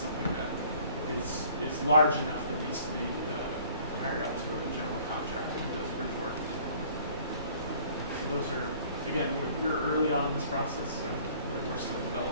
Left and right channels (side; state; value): both; inverted; correlation -0.54